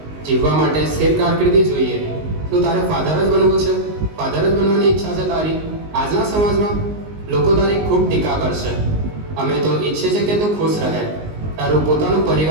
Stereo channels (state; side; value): late; left; 19 ms